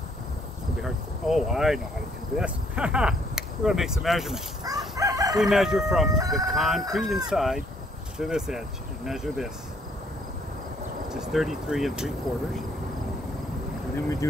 to be hard to, oh, I know how to do this. We're going to make some measurements. We measure from the concrete inside to this edge and measure this, which is 33 3/4. And then we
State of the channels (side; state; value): both; normal; correlation 0.66